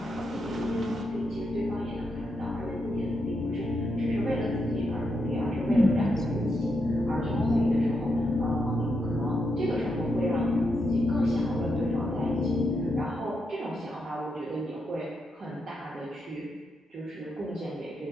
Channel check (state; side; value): normal; both; correlation 0.83